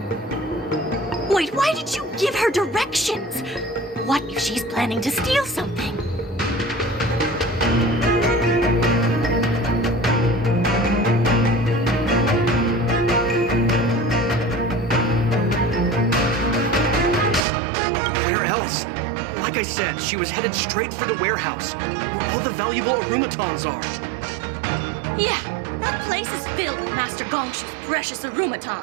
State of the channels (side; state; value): left; drops out; at 17.4 s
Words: Wait, why did you give her directions? What if she's planning to steal something? Like I said, she was headed straight for the warehouse, where all the valuable arumatons are. Yeah, that place is filled with Master Gongshu's precious